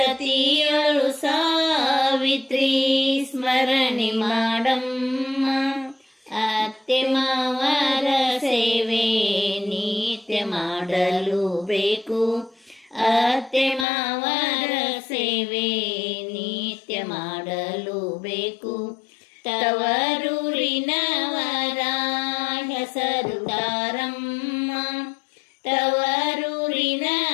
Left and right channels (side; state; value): right; drops out; at 13.9 s